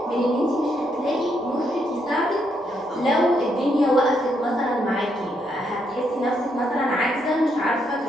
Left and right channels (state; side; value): normal; both; correlation 0.76